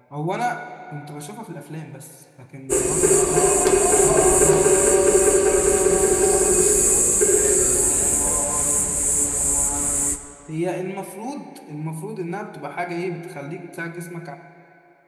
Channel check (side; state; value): both; identical; correlation 1.00